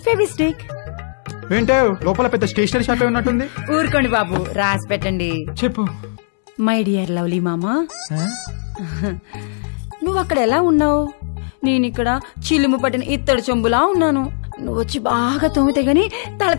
ఫెవిస్టిక్. ఏంటో లోపల పెద్ద స్టేషనరీ షాప్ ఉన్నట్టుంది. ఊరుకోండి బాబు, రాసి పెట్టండి. చెప్పు. మై డియర్ లవ్లీ మామా, నువ్వు అక్కడ ఎలా ఉన్నావు? నేను ఇక్కడ చిలుము పట్టిన ఇత్తడి చెంబులా ఉన్నాను. నువ్వు వచ్చి బాగా తోమితే గాని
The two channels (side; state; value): right; silent; 67 dB below the other